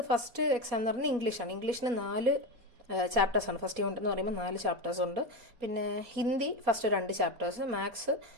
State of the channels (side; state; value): left; late; 4.2 ms